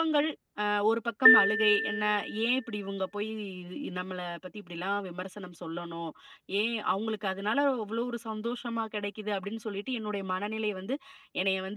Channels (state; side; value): identical; both; correlation 1.00